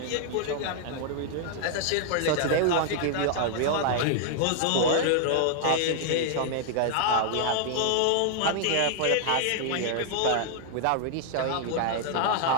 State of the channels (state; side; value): different; both; correlation 0.00